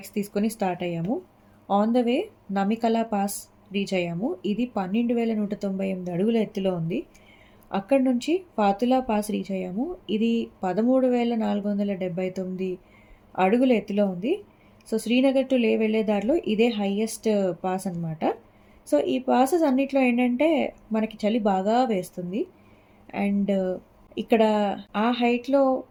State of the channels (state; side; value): identical; both; correlation 1.00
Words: తీసుకొని స్టార్ట్ అయ్యాము. On the way Namikala pass reach అయ్యాము. ఇది 12,198 అడుగుల ఎత్తులో ఉంది. అక్కడి నుంచి ఫాతులా పాస్ రీచ్ అయ్యాము. ఇది 13,479 అడుగుల ఎత్తులో ఉంది. సో శ్రీనగర్ టు లే వెళ్ళే దారిలో ఇదే హైయెస్ట్ పాస్ అనమాట. సో ఈ పాసెస్ అన్నిట్లో ఏంటంటే మనకి చలి బాగా వేస్తుంది. అండ్ ఇక్కడ ఆ హైట్లో